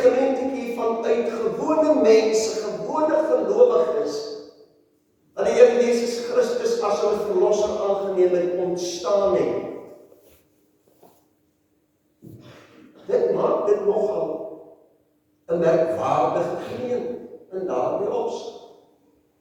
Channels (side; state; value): both; identical; correlation 1.00